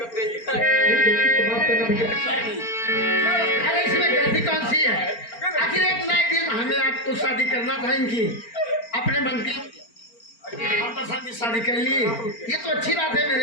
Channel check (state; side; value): late; right; 4.4 ms